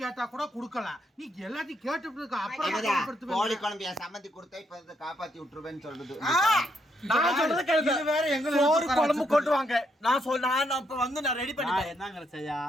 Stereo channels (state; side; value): normal; both; correlation 0.76